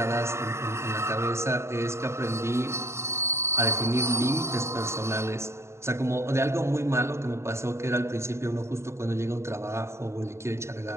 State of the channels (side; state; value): left; late; 0.13 ms